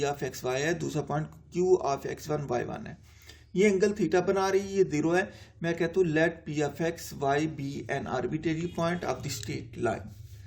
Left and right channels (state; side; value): identical; both; correlation 1.00